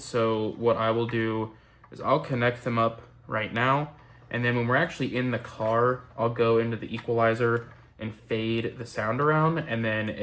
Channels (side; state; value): both; identical; correlation 1.00